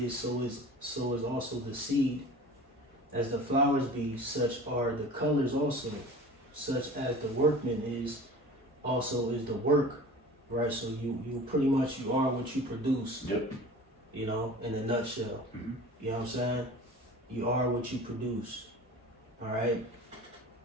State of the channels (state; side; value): normal; both; correlation 0.40